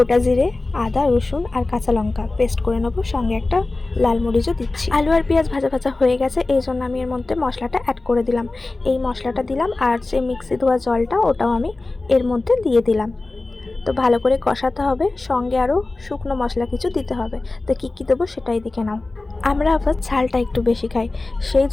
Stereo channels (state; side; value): quieter; right; 3.2 dB